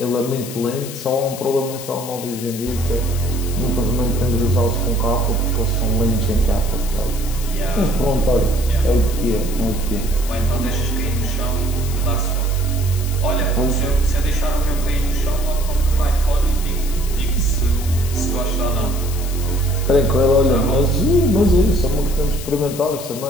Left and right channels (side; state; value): left; noise; hiss, 12 dB below the sound